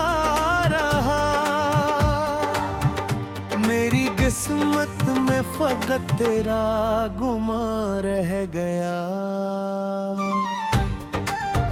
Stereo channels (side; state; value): both; identical; correlation 1.00